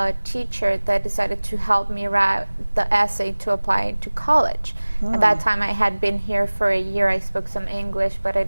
teacher that decided to help me write the essay to apply to college. At that time, I had been here for a year. I spoke some English, but I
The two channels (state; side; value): inverted; both; correlation -1.00